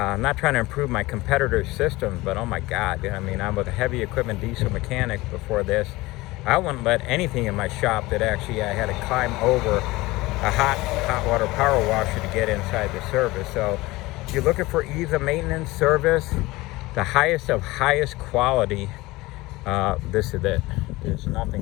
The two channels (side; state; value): right; quieter; 20.4 dB